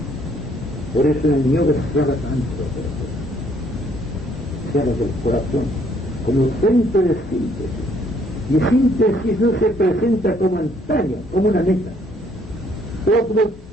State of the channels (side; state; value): both; normal; correlation 0.65